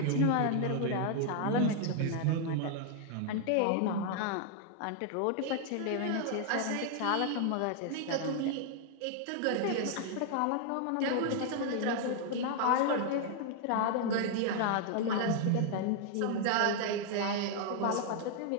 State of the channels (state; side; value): different; both; correlation 0.00